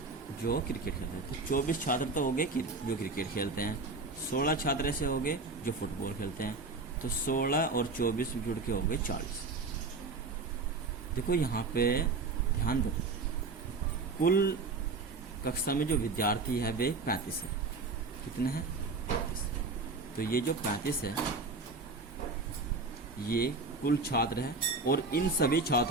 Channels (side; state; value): left; quieter; 3.8 dB